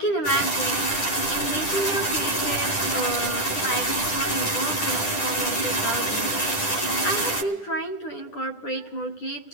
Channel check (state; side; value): late; right; 10 ms